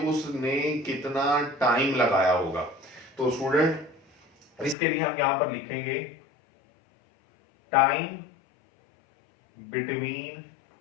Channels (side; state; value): right; drops out; at 4.8 s